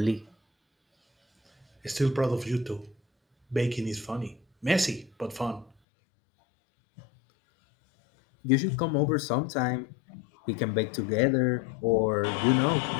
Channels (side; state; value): right; drops out; at 5.7 s